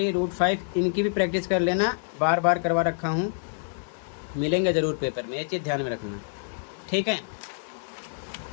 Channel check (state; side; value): silent; right; digital silence